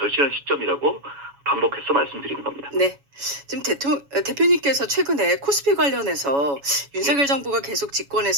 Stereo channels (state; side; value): late; left; 7.1 ms